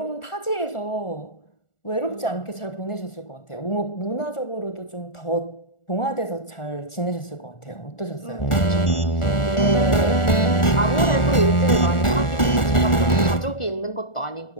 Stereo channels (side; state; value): right; late; 1.4 ms